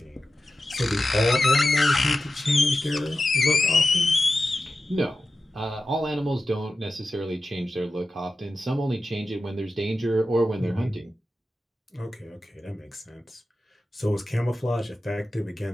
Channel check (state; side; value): normal; both; correlation 0.93